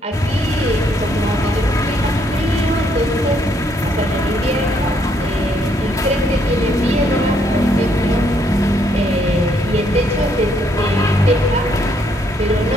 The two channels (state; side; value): normal; both; correlation 0.71